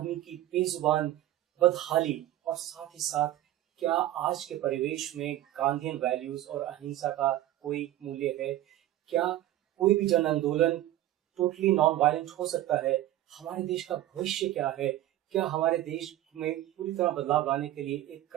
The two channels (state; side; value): quieter; left; 14.2 dB